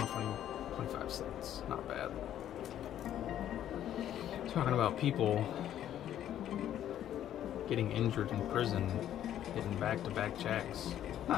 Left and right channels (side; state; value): right; quieter; 11.2 dB